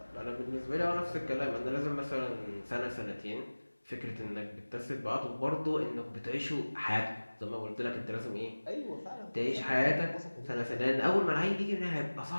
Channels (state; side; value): inverted; both; correlation -1.00